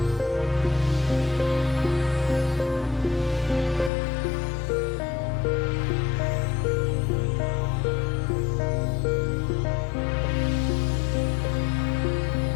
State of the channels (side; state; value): right; drops out; at 3.9 s